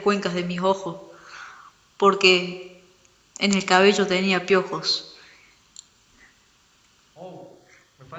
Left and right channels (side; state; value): both; identical; correlation 1.00